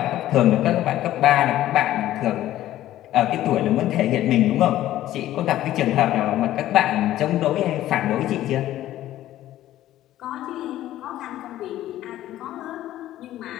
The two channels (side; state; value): right; quieter; 13.8 dB